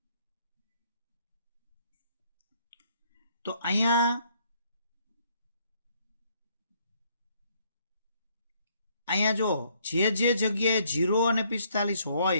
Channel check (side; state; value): both; inverted; correlation -0.68